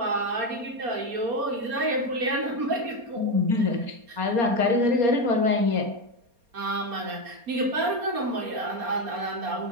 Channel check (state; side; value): late; left; 4.3 ms